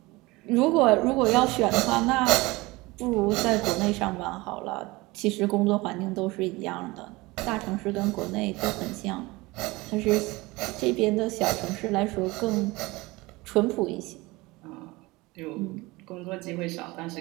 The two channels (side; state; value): left; quieter; 22.0 dB